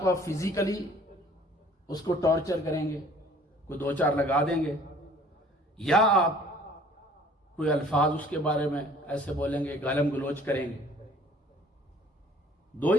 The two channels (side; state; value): both; normal; correlation 0.53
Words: آپ فزیکلی اس کو ٹارچر کریں گے، کوئی 2-4 لگا دیں گے، یا آپ کوئی الفاظ اس کے بارے میں ایسے بولیں گے، گالم گلوچ کریں گے. 2